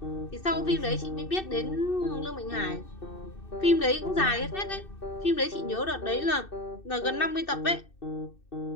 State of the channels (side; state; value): right; late; 2.6 ms